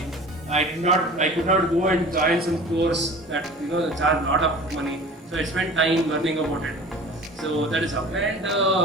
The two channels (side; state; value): both; normal; correlation 0.41